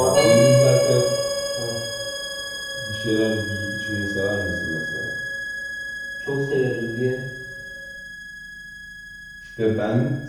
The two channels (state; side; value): identical; both; correlation 1.00